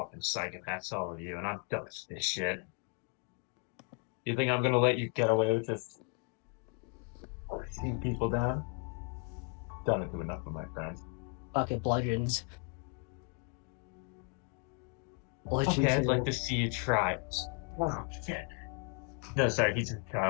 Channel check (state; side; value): quieter; right; 36.3 dB